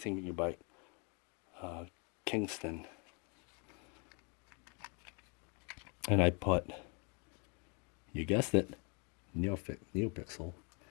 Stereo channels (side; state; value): right; quieter; 34.4 dB